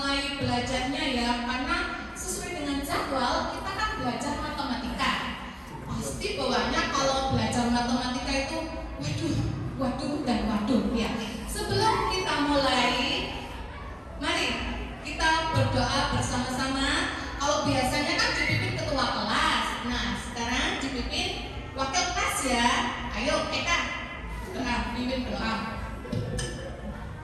belajarnya ya, karena sesuai dengan jadwal kita kan belajar matematika. Pasti bawaannya kalau belajar matematika itu waduh dan waduh ya. Sebelum kita mulai, mari kita berdoa bersama-sama. Kalau biasanya kan dipimpin ketua kelas, nah sekarang dipimpin wakil kelas ya. Ayo Eka, doa, pimpin doa.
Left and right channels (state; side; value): identical; both; correlation 1.00